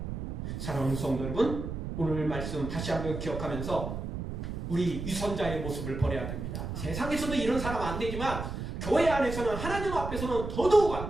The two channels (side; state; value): right; noise; rumble, 5 dB below the sound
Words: 사랑하는 성도 여러분, 오늘 말씀 다시 한번 기억하면서 우리 유선자의 모습을 버려야 됩니다. 세상에서도 이런 사람 안 되지만 교회 안에서는 하나님 앞에서는 더더욱 안